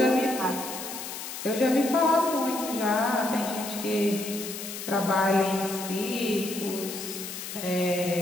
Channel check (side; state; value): left; noise; hiss, 8 dB below the sound